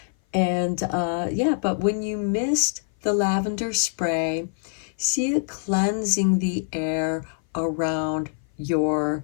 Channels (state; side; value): silent; right; 57 dB below the other